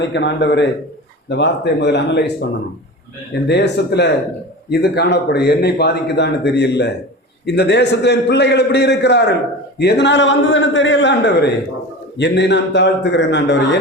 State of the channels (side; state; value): both; normal; correlation 0.31